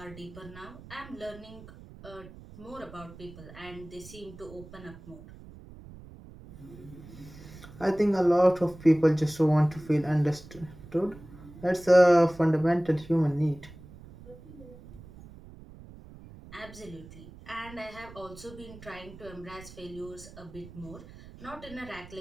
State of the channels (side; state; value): right; noise; rumble, 18 dB below the sound